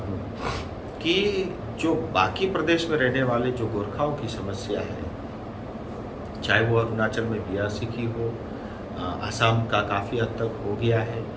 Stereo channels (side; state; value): both; identical; correlation 1.00